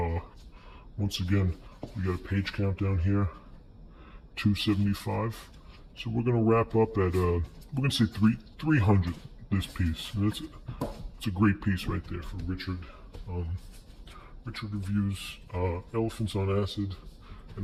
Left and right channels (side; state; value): both; identical; correlation 1.00